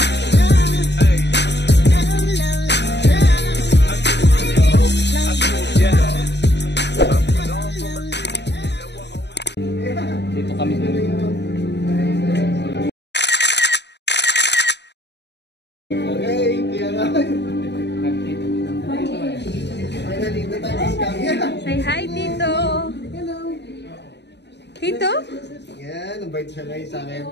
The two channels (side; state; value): right; late; 0.50 ms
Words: Dito kami sa Okay, kaya nga. Finally, the time is coming. Say hi, Tito. Hello. Tito? Yan, invite siya ngayon sa akin.